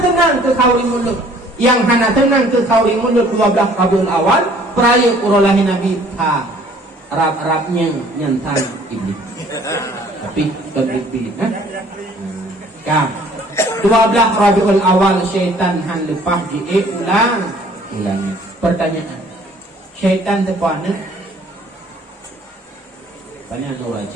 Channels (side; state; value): both; normal; correlation 0.56